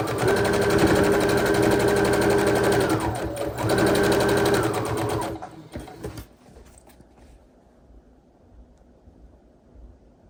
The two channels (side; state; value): both; identical; correlation 1.00